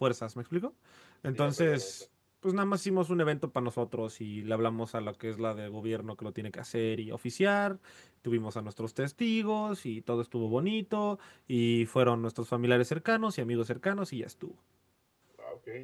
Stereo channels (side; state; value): both; identical; correlation 1.00